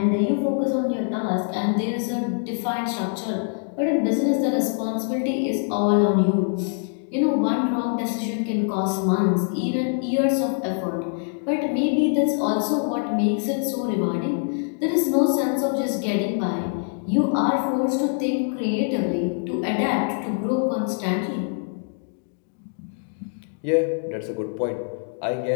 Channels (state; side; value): silent; right; 63 dB below the other